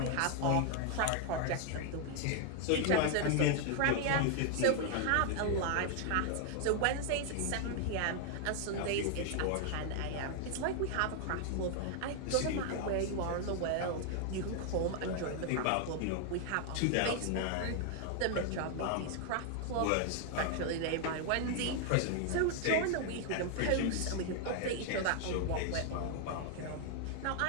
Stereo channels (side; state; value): both; different; correlation 0.00